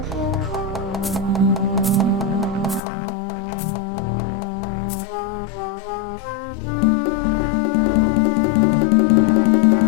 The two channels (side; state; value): right; drops out; at 2.8 s